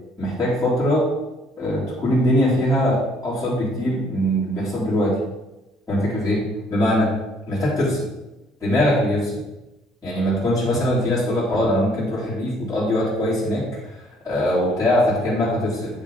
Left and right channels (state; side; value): normal; both; correlation 0.64